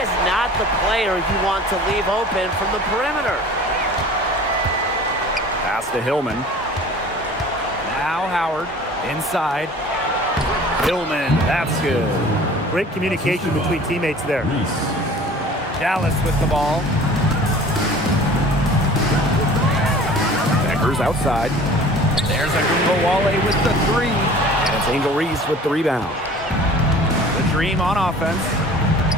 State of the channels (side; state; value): both; normal; correlation 0.45